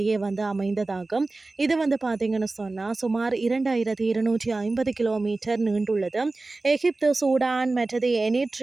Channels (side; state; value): left; quieter; 3.3 dB